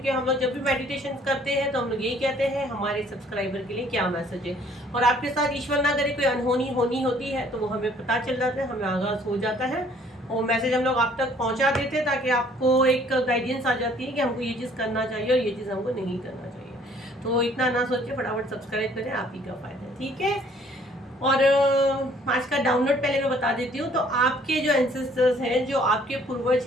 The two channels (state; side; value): normal; both; correlation 0.59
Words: हम लोग जब भी मेडिटेशन करते हैं तो हम लोग यही कहते हैं हमारे सब्सक्राइबर के लिए क्या मैसेज है। और आपके साथ ईश्वर ना करे कोई अनहोनी होनी होती है तो वो हमें पता चल जाता है, हमें आगाज़ हो जाता है और मैसेज हम लोग आप तक पहुंचा देते हैं, ताकि आपको एक गाइडेंस आ जाती है कि हमको ये चीज़ करना चाहिए और ये चीज़ हमको नहीं करना चाहिए। तो इतना ना सोचिए, फटाफट सब्सक्राइब करें, आप ही का फायदा है, ठीक है। और आज का डाउनलोड पहले मैं बता देती हूँ। तो आपके जो एंसेस्टर्स हैं, जो आपके पूर्वज